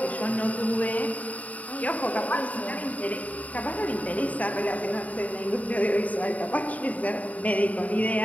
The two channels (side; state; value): right; late; 0.071 ms